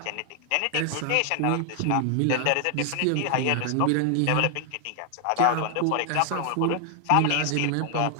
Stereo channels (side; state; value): both; different; correlation 0.00